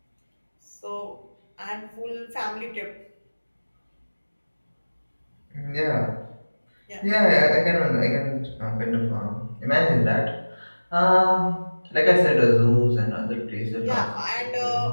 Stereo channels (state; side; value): inverted; both; correlation -1.00